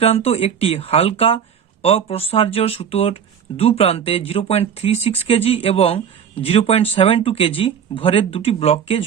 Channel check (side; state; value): left; quieter; 7.9 dB